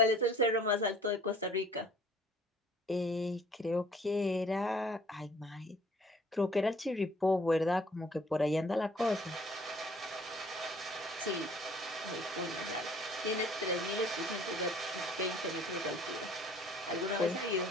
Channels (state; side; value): normal; both; correlation 0.55